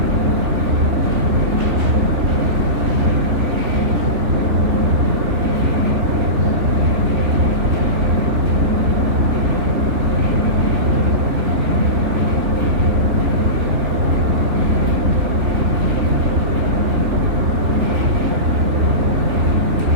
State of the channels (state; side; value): late; left; 3.5 ms